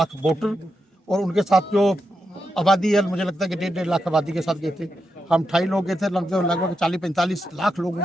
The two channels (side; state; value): both; normal; correlation 0.86